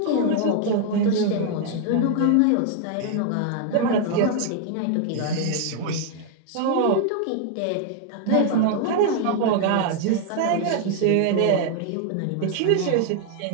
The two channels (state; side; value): different; both; correlation 0.00